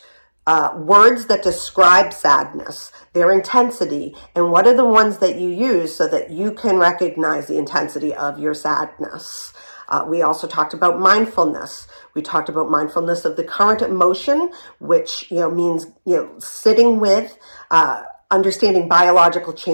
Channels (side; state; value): both; inverted; correlation -1.00